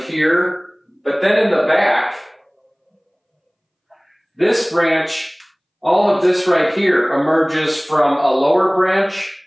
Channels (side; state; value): both; identical; correlation 1.00